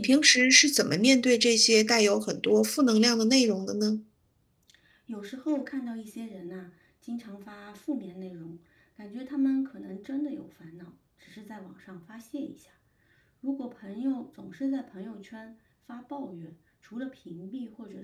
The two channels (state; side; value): identical; both; correlation 1.00